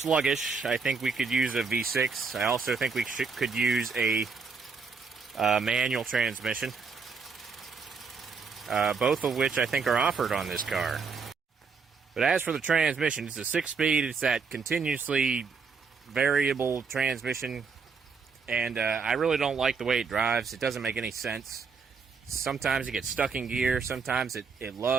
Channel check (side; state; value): left; quieter; 5.2 dB